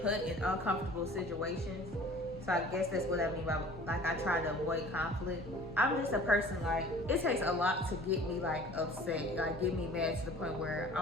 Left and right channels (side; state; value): both; normal; correlation 0.47